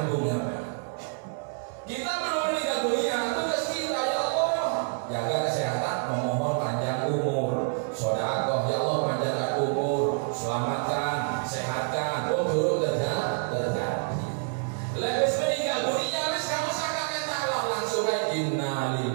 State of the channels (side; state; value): left; silent; 60 dB below the other